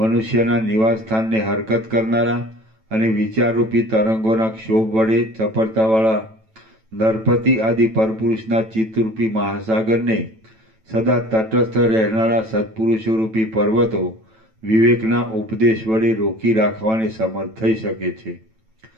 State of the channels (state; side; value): late; left; 9.1 ms